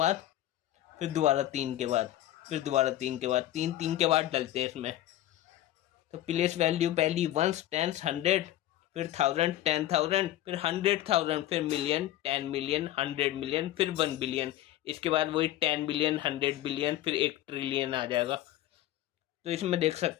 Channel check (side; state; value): right; quieter; 14.0 dB